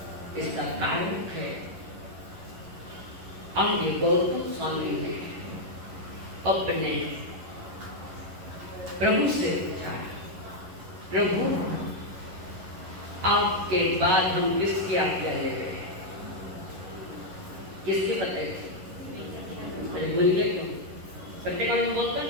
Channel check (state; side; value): late; left; 11 ms